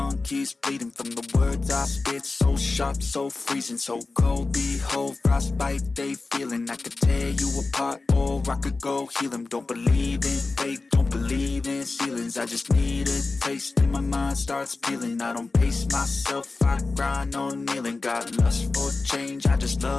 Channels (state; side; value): quieter; right; 3.7 dB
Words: keeps bleeding from the words I spit. So sharp, so freezing, so cold. Behold, frostbite they feeling. I could tear you apart or I could go heal them. Don't believe in fate, don't believe in ceilings. I just need a taste and my mind starts peeling. I don't pace myself, I grind on kneeling. Got lust for change, I just